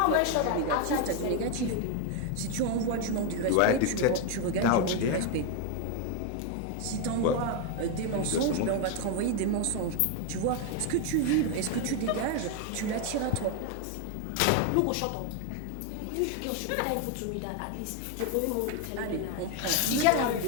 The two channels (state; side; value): different; both; correlation 0.01